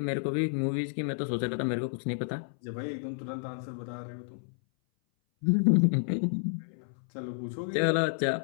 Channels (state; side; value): silent; right; 58 dB below the other